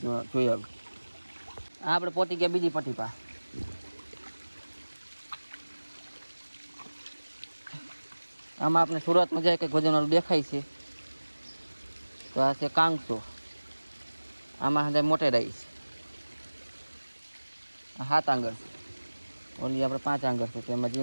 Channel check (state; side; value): inverted; both; correlation -1.00